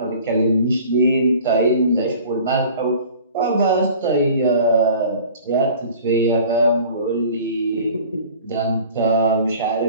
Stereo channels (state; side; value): inverted; both; correlation -0.46